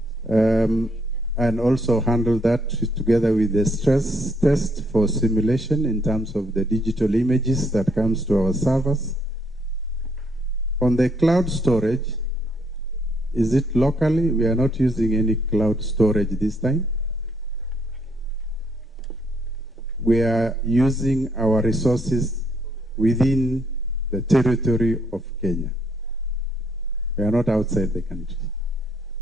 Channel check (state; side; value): normal; both; correlation 0.70